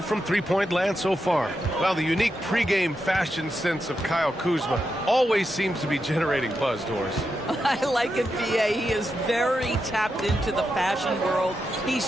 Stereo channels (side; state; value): both; normal; correlation 0.86